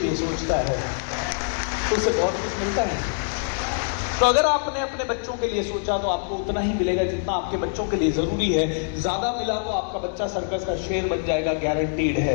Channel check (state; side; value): silent; right; digital silence